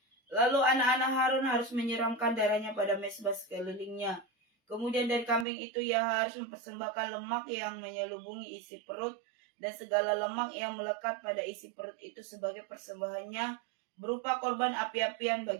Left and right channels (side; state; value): left; drops out; at 5.5 s